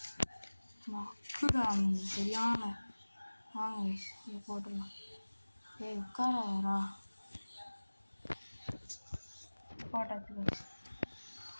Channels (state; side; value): inverted; both; correlation -1.00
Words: மக்குடா சரியான. வாங்க கைஸ் இதை போட்டுடலாம். உட்காரா போட்டாச்சு கைஸ்,